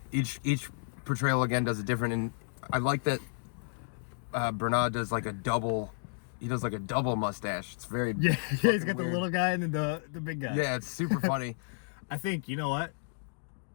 each portrayal again does it different. And I like that Branagh does like a double. He does like a double mustache. It's very he's got the weird. little guy and then the big guy. Yeah, it's super funny. I think, you know what?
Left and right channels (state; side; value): silent; right; digital silence